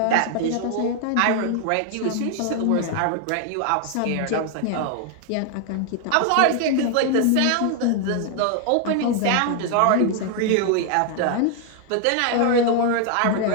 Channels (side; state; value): both; different; correlation 0.00